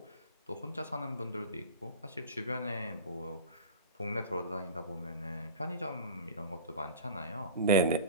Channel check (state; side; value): inverted; both; correlation -0.36